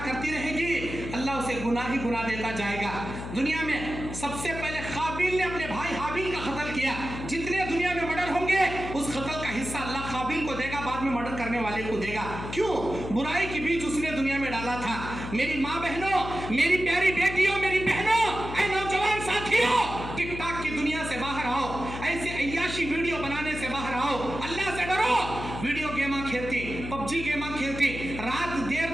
करती रहेगी अल्लाह उसे गुनाह ही गुनाह देता जाएगा दुनिया में सबसे पहले काबिल ने अपने भाई हाबिल का कत्ल किया जितने दुनिया में मर्डर होंगे उस कत्ल का हिस्सा अल्लाह काबिल को देगा बाद में मर्डर करने वाले को देगा क्यों बुराई के बीच उसने दुनिया में डाला था मेरी माँ बहनों मेरी प्यारी बेटियों मेरी बहनों ऐ नौजवान साथियों टिकटॉक की दुनिया से बाहर आओ ऐसे अय्याशी वीडियो बनाने से बाहर आओ अल्लाह से डरो वीडियो गेमा खेलती पबजी गेमा खेलती रात देर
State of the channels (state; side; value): noise; left; hum, 8 dB below the sound